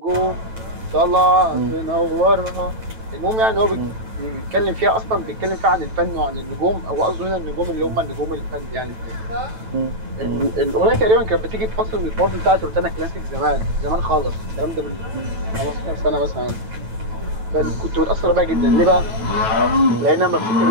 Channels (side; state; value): left; late; 9.1 ms